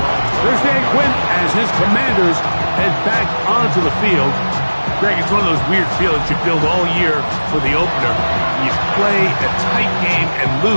There's Dan Quinn as his Commanders head back onto the field. Greg, it's one of those weird feelings you build all year for the opener. You play a tight game and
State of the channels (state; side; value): inverted; both; correlation -1.00